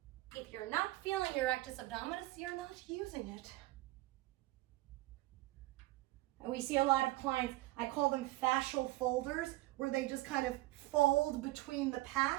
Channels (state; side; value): quieter; left; 19.0 dB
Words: If you're not feeling your rectus abdominis, you're not using it. And we see a lot of clients, I call them fascial folders, where they just kind of fold between the